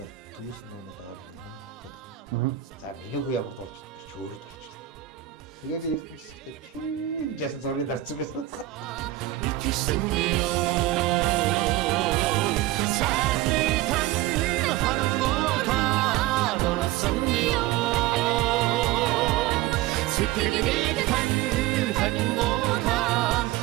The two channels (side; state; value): left; quieter; 14.9 dB